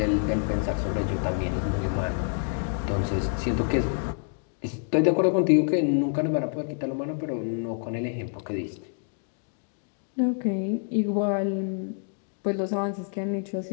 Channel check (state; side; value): silent; right; 60 dB below the other